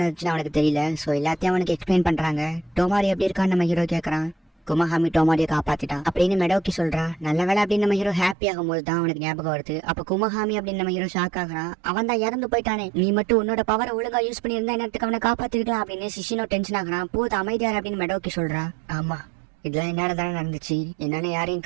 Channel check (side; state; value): left; drops out; at 8.3 s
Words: அவனுக்கு தெரியல. சோ எல்லாத்தையும் அவனுக்கு எக்ஸ்பிளைன் பண்றாங்க. டோமாரி எப்படி இருக்கான்னு நம்ம ஹீரோ கேக்குறான். குமஹாமி டோமாரியை காப்பாத்திட்டான் அப்படின்னு மெடோக்கி சொல்றா. நல்ல வேலை அப்படின்னு நம்ம ஹீரோ ஹாப்பி ஆகும் போது தான் அவனுக்கு ஞாபகம் வருது. அப்ப குமஹாமி அப்படின்னு நம்ம ஹீரோ ஷாக் ஆகுறான். அவன் தான் இறந்து போயிட்டானே, நீ மட்டும் உன்னோட பவரை ஒழுங்கா யூஸ் பண்ணி இருந்தா நேரத்துக்கு அவனை காப்பாத்திருக்கலாம் அப்படின்னு சிஷினோ டென்ஷன் ஆகுறான். போது அமைதியார் அப்படின்னு மெடோக்கி சொல்றா. ஆமா, இதெல்லாம் என்னால தானே நடந்துச்சு, என்னால யாரையும்